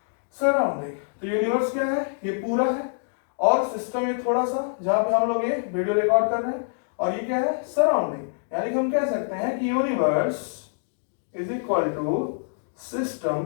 Surrounding. तो universe क्या है? ये पूरा है। और सिस्टम ये थोड़ा सा, जहां पे हम लोग ये वीडियो रिकॉर्ड कर रहे हैं। और ये क्या है? सराउंडिंग। यानी कि हम कह सकते हैं कि universe is equal to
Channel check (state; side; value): silent; right; digital silence